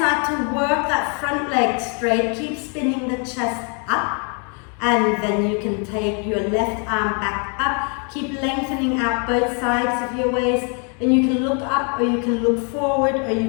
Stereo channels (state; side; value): quieter; right; 38.3 dB